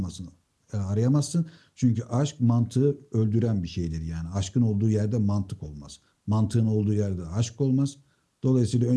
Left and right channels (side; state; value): both; identical; correlation 1.00